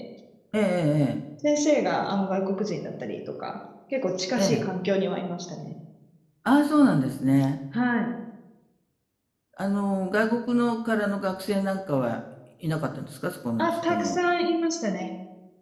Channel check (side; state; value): both; identical; correlation 1.00